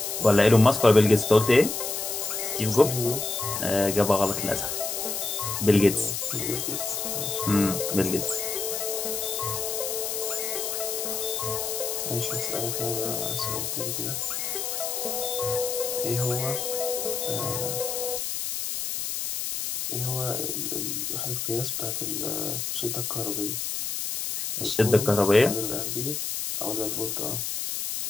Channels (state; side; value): noise; left; hiss, 3 dB below the sound